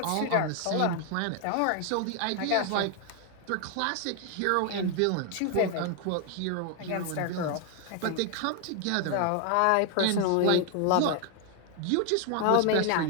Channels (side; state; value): both; different; correlation 0.00